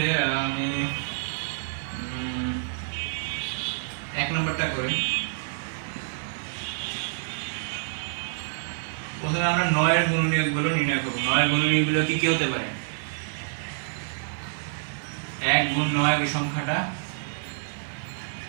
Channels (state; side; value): silent; left; digital silence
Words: আমি 1 নম্বরটা করি। প্রথমে আমরা 9 এর গুণনীয়কগুলো নির্ণয় করব। 9 এর গুণনীয়কগুলো কি কি হতে পারে? 1 গুণ 9 এই সংখ্যাটা,